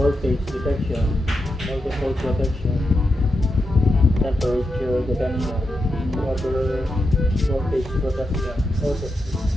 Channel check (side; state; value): both; normal; correlation 0.87